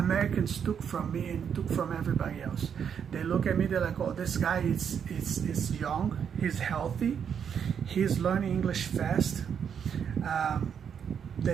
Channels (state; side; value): quieter; left; 7.7 dB